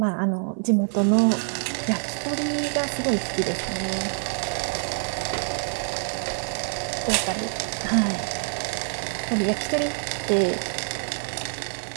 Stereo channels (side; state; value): left; silent; 61 dB below the other